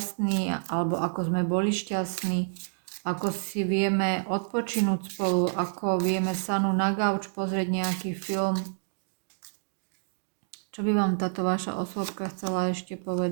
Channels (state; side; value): silent; left; digital silence